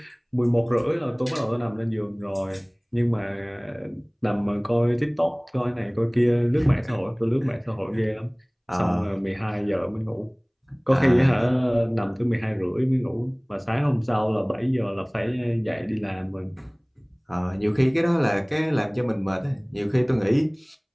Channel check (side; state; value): both; identical; correlation 1.00